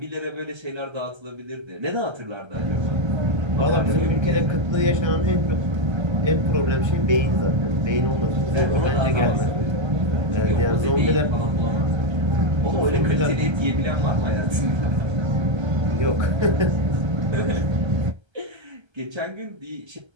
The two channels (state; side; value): late; left; 1.3 ms